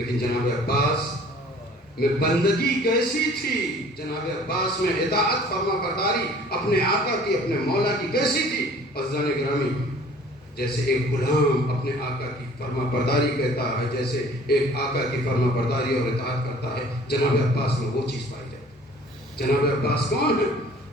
جناب عباس میں بندگی کیسی تھی، جناب عباس میں اطاعت فرما برداری اپنے آقا کی، اپنے مولا کی کیسی تھی۔ عزیزان گرامی، جیسے ایک غلام اپنے آقا کی فرما برداری کہتا ہے، جیسے ایک آقا کی فرما برداری اور اطاعت کرتا ہے، جناب عباس میں وہ چیز پائی جاتی ہے۔ جناب عباس کون ہے؟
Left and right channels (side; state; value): both; normal; correlation 0.51